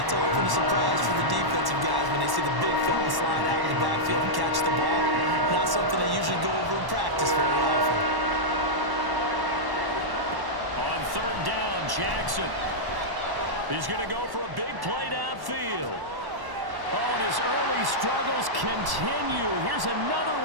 often a surprise for the defensive guys when they see the big fella slide out of the backfield and catch the ball. Not something they usually go over in practice very often. On 3rd down, Jackson. He's going to go for a big play downfield. Oh, and his early struggles continue. Here's another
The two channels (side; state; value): left; late; 1.1 ms